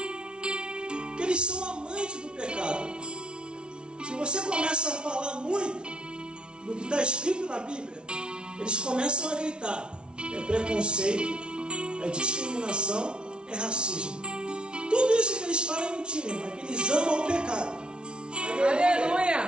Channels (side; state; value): left; late; 0.056 ms